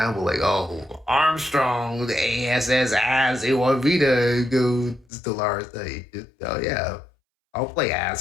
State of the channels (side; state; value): right; drops out; at 5.1 s